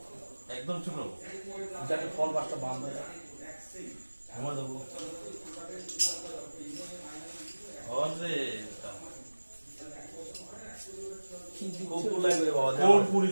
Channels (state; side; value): inverted; both; correlation -1.00